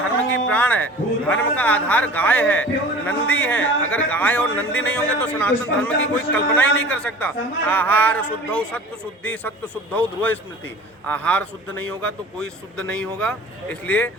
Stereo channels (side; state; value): both; normal; correlation 0.42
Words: धर्म की प्राण है। धर्म का आधार गाय है, नंदी है। अगर गाय और नंदी नहीं होंगे तो सनातन धर्म की कोई कल्पना ही नहीं कर सकता। आहार शुद्धौ सत्व शुद्धि, सत्व शुद्धौ ध्रुव स्मृति। आहार शुद्ध नहीं होगा तो कोई शुद्ध नहीं होगा। इसलिए